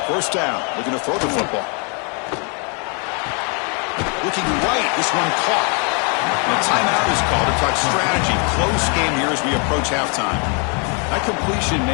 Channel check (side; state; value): right; quieter; 36.5 dB